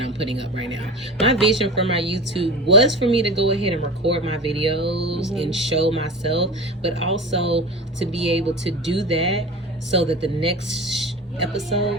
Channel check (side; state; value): both; normal; correlation 0.31